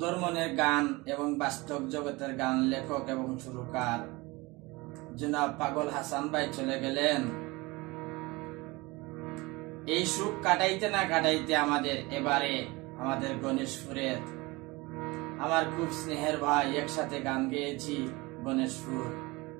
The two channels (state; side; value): quieter; left; 23.3 dB